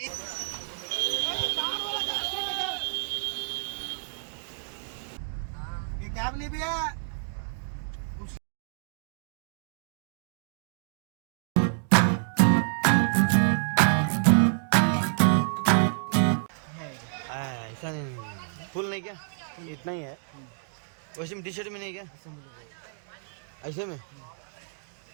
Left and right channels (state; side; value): silent; left; 59 dB below the other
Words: ये कैब नहीं भैया। ऐसा नहीं, फुल नहीं क्या, इतना ही है। वैसे में टी शर्ट में नहीं क्या, ऐसे में